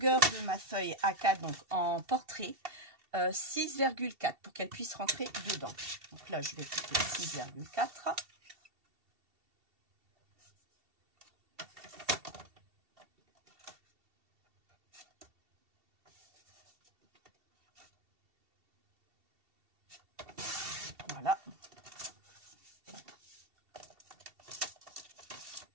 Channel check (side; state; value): left; late; 2.7 ms